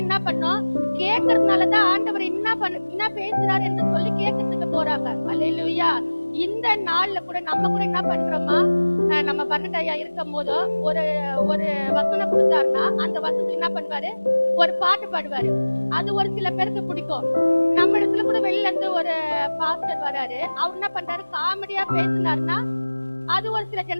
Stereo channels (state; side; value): inverted; both; correlation -1.00